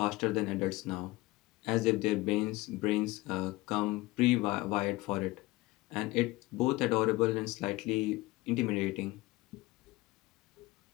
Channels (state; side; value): quieter; right; 20.7 dB